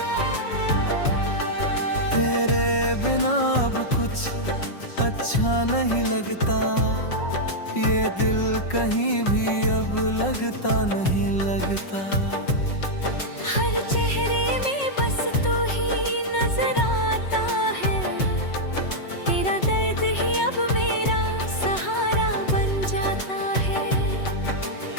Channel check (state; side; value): late; right; 5.4 ms